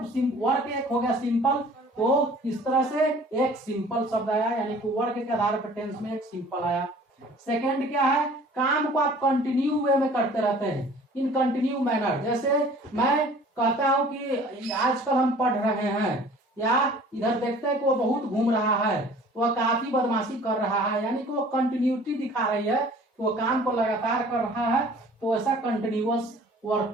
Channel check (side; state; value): both; normal; correlation 0.49